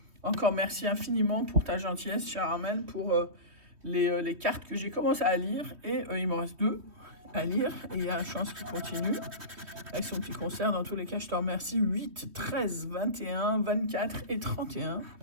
Encore merci infiniment pour ta gentillesse, chère Armelle, pour les cartes que j'ai commencé à lire. Et il m'en reste 2 à lire. Et il y a la chance qu'il continue avec son petit concert. Dans tous les cas, je te remercie. 8, 13, 21, 24 et 31.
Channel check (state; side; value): late; left; 3.2 ms